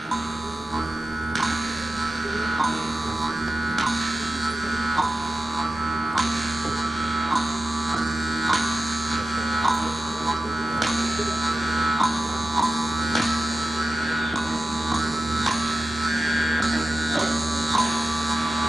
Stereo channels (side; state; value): both; normal; correlation 0.91